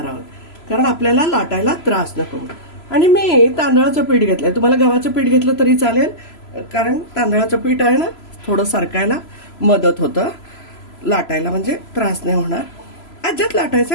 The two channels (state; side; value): late; right; 3.0 ms